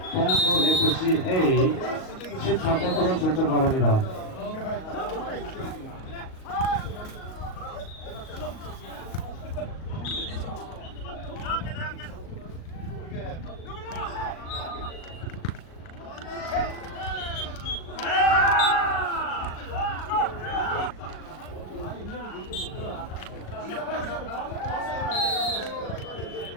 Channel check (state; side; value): late; right; 38 ms